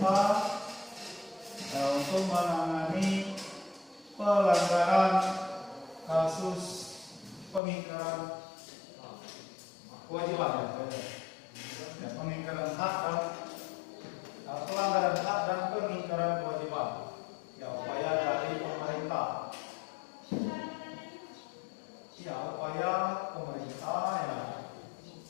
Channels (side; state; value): right; drops out; at 7.6 s